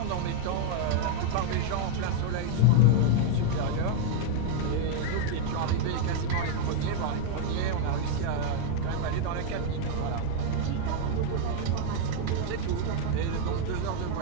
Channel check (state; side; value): different; both; correlation 0.00